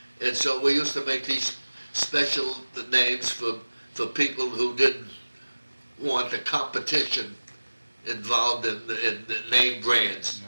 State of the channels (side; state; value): both; inverted; correlation -1.00